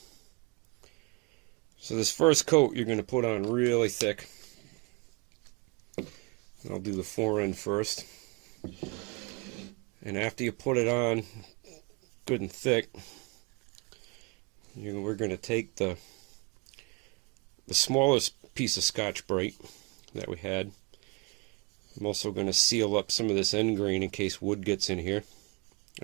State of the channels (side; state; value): left; quieter; 29.4 dB